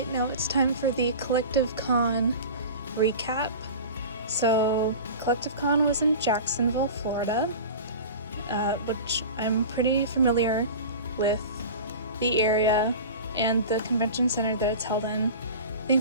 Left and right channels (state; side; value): inverted; both; correlation -0.34